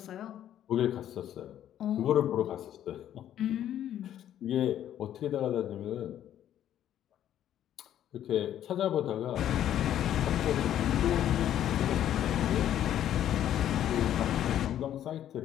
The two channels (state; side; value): quieter; right; 11.1 dB